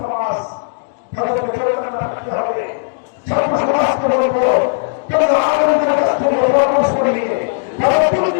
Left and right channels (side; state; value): right; silent; digital silence